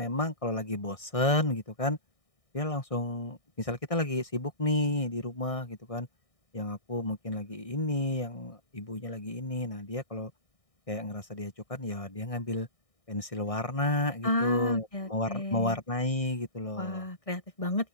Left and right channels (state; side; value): late; right; 1.6 ms